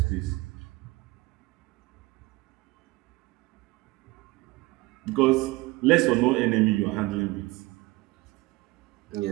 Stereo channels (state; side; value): quieter; left; 21.2 dB